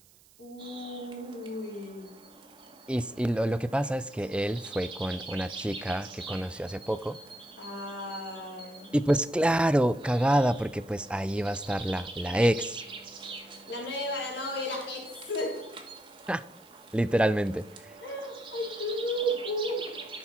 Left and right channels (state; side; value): noise; right; hiss, 27 dB below the sound